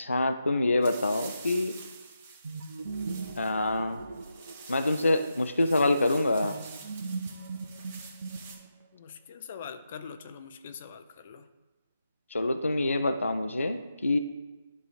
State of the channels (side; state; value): both; inverted; correlation -0.86